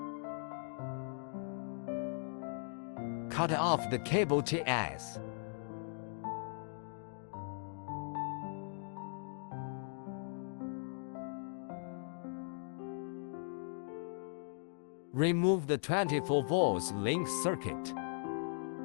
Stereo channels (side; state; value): right; silent; digital silence